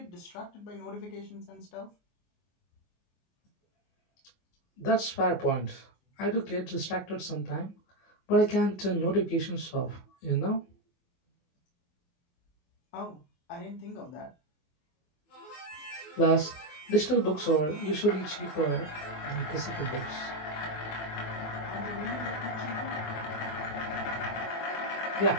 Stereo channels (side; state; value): right; late; 24 ms